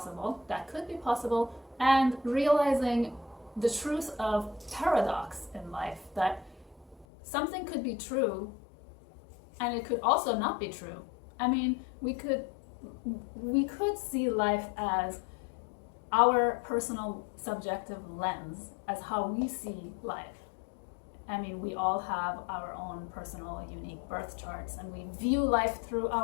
that could be possible, and realizing the truth of paradox in life, that something could be true and it could also not be true. I mean, we could see life as our personal subjective lens, as how we see life. I mean, we all have our own personal unique birth charts, and we view life through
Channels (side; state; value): right; drops out; at 7.1 s